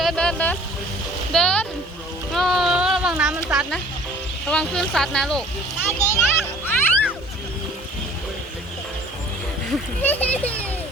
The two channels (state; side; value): normal; both; correlation 0.51